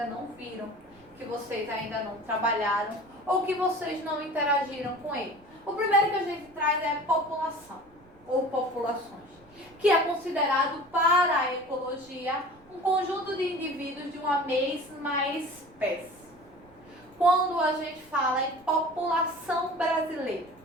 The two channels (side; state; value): right; noise; rumble, 28 dB below the sound